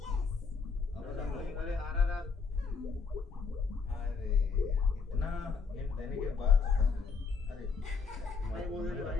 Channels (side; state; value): right; quieter; 5.1 dB